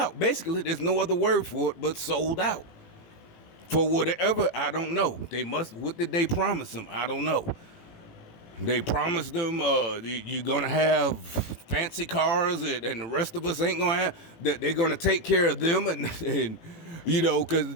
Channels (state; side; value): late; right; 18 ms